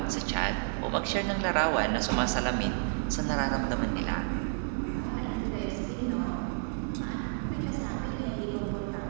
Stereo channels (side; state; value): left; silent; digital silence